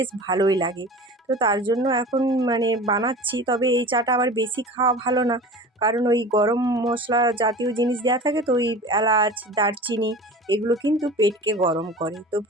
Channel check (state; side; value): normal; both; correlation 0.37